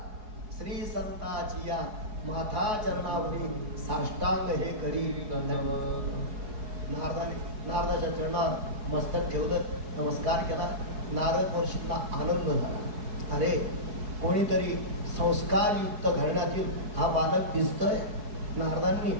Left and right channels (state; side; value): late; left; 4.7 ms